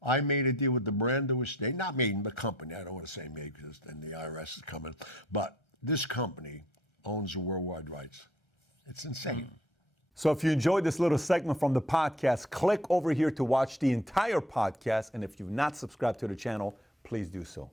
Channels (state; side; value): normal; both; correlation 0.58